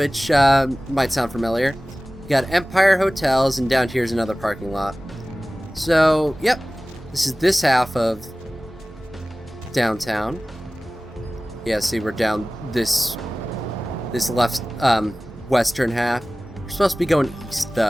might sound familiar. We got Empire Hotels, and down here's another parking lot. So, yep. This is this half of downtown. Yeah, see, we're down this left, western half. We're supposed to be going east,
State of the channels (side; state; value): both; normal; correlation 0.97